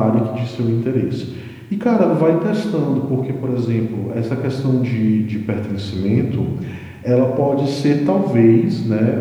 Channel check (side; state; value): both; identical; correlation 1.00